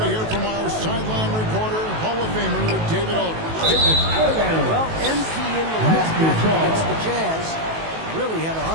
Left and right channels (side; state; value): left; late; 19 ms